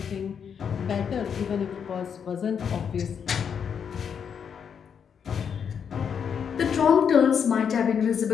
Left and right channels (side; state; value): right; quieter; 7.3 dB